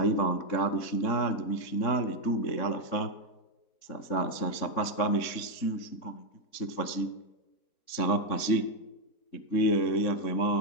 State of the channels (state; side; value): late; right; 3.7 ms